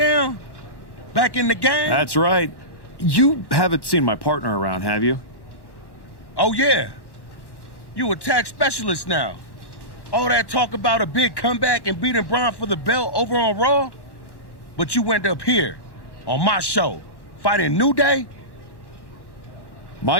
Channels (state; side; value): late; right; 1.1 ms